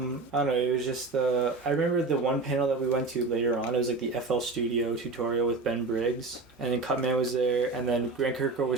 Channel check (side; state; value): left; quieter; 3.7 dB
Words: know. It was just I remember the one panel that we went to later on. It was like the FL Studio tutorial with Ben Briggs, and then Cutman was there, and then Grant Kirkhope